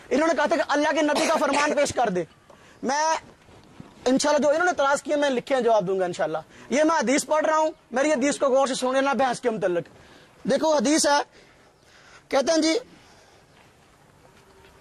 انہوں نے کہا تھا کہ اللہ کے نبی کا فرمان پیش کر دے. میں انشاءاللہ جو انہوں نے اعتراض کیے میں لکھے ہیں جواب دوں گا انشاءاللہ. یہ میں حدیث پڑھ رہا ہوں, میری حدیث کو غور سے سن لینا بحث کے متعلق. دیکھو حدیث ہے, کہتے ہیں جی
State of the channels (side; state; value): both; identical; correlation 1.00